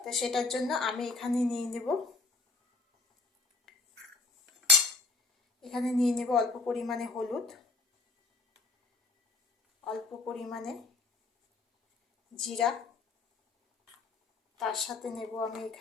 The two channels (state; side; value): quieter; right; 3.9 dB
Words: সেটার জন্য আমি এখানে নিয়ে নেব অল্প পরিমাণে হলুদ, অল্প পরিমাণে জিরা, তার সাথে নেব আমি